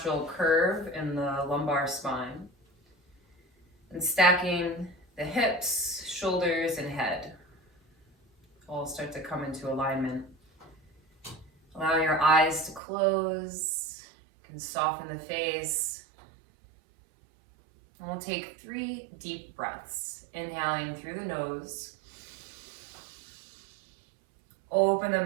curve in the lumbar spine. And stacking the hips, shoulders, and head all start to come into alignment. Allow your eyes to close. You can soften the face. And we'll take 3 deep breaths. Inhaling through the nose. Open the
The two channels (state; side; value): drops out; left; at 12.8 s